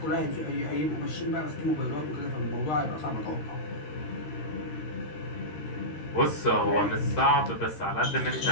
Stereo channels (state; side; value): late; right; 13 ms